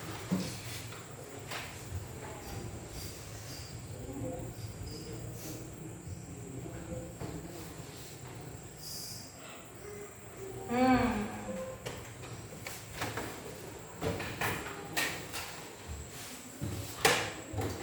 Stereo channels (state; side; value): identical; both; correlation 1.00